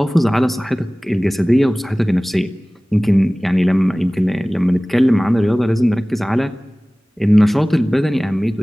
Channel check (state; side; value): normal; both; correlation 0.98